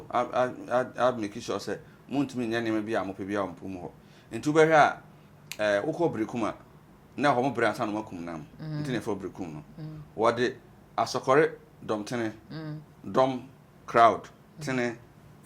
a make sure say muntumi nya ne me bia mo pebia ompum ho nti ubehwe a ukọ brekum na ho mo bre ansa no makum nam nti ne fo brekum no wode asokore dom tene dom crowd tene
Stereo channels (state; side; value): identical; both; correlation 1.00